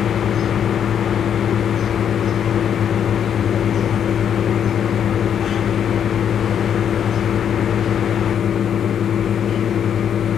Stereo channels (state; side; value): quieter; right; 8.6 dB